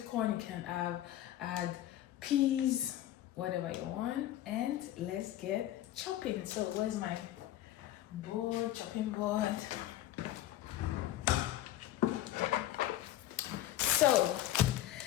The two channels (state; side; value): quieter; right; 13.5 dB